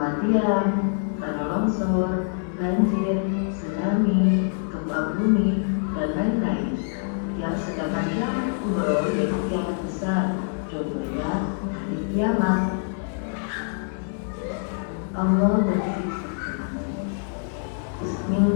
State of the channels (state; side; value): silent; right; digital silence